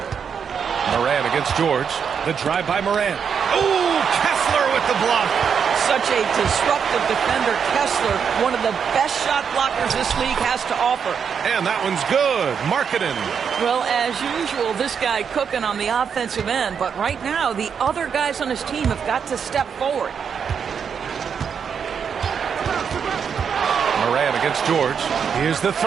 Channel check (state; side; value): quieter; left; 7.0 dB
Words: Morant against George. The drive by Morant. Ooh, Kessler with the block. Such a disruptive defender, Kessler, one of the best shot blockers this league has to offer. And that one's good. Markkanen. Well, as usual, this guy cooking on the offensive end, but right now the other guys on his team have got to step forward. Morant against George. Here's the